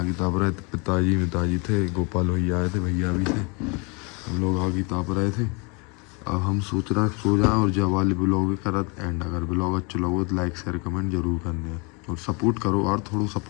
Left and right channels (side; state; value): right; quieter; 31.4 dB